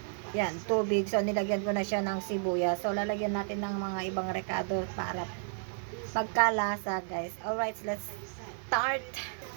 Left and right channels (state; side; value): silent; left; 56 dB below the other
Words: tubig. So, nilagyan ko na siya ng sibuyas. So, lalagyan natin ng mga ibang rekado para pagkalasa, guys. Alright, let's start.